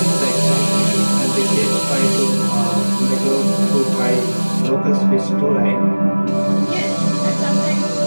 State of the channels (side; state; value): both; inverted; correlation -1.00